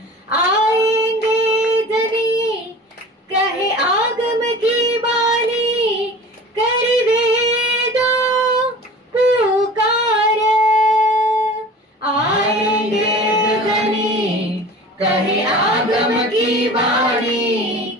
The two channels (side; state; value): both; normal; correlation 0.40